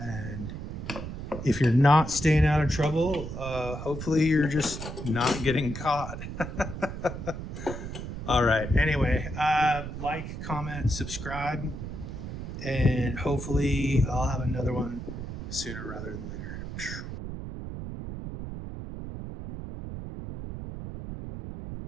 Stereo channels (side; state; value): right; noise; rumble, 8 dB below the sound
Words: if you're not staying out of trouble, hopefully you're just not getting caught. All right. Anyway, like, comment, subscribe, and hopefully I'll have another one sooner rather than later.